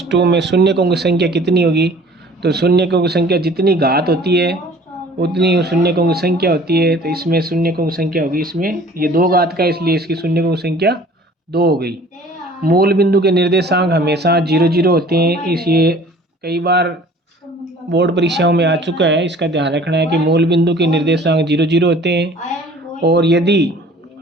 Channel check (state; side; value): normal; both; correlation 0.49